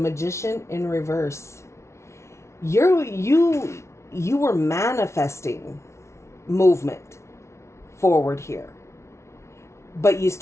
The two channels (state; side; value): late; right; 0.13 ms